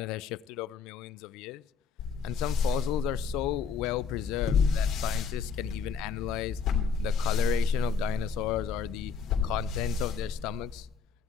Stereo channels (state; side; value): quieter; right; 5.8 dB